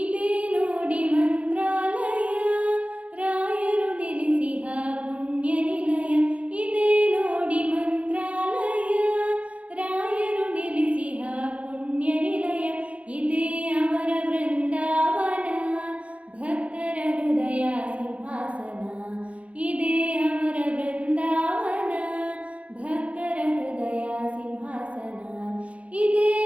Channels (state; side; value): late; left; 0.064 ms